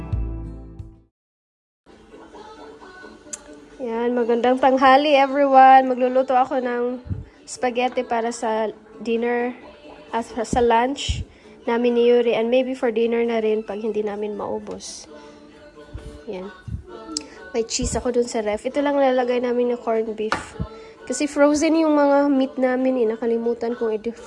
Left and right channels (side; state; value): both; identical; correlation 1.00